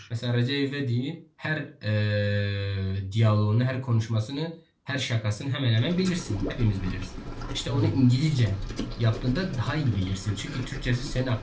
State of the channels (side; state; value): both; identical; correlation 1.00